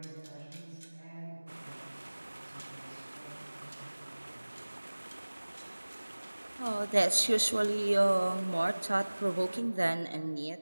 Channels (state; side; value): inverted; both; correlation -1.00